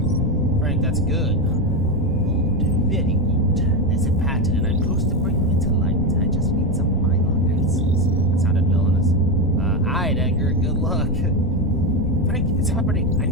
Frank, that's good. Good. Very good. There's a pattern, and I'm close to bringing it to light. I just need some final answers. That sounded villainous. Alright, Edgar. Good luck. Frank, it's happening. I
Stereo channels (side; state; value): both; normal; correlation 0.12